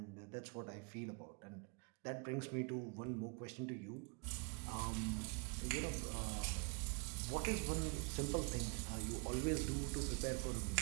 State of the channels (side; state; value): left; quieter; 32.8 dB